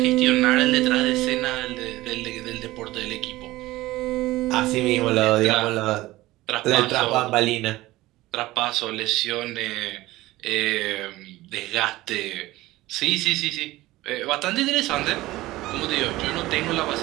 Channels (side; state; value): left; quieter; 17.9 dB